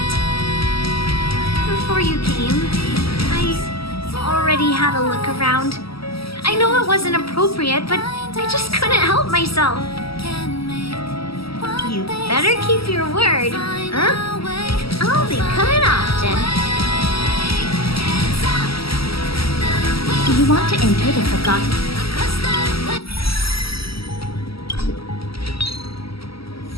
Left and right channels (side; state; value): right; late; 0.75 ms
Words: Before you came, I already had a look around. I know it wasn't appropriate, but I just couldn't help myself. You better keep your word, huh? I'll be coming often. You want to enter the Forgotten...